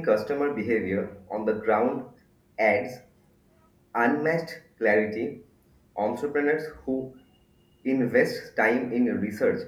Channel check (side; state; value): both; identical; correlation 1.00